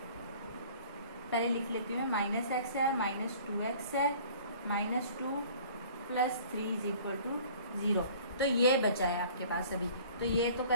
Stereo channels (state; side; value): inverted; both; correlation -0.49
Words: पहले लिख लेती हूँ, माइनस एक्स है माइनस 2x है minus 2 plus 3 is equal to 0। तो ये बचा है आपके पास अभी, तो ये तो